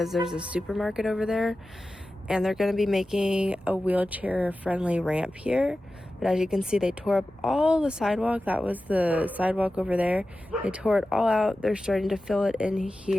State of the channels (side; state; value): both; normal; correlation 0.94